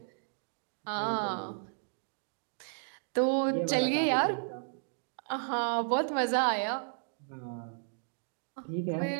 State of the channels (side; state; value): left; silent; digital silence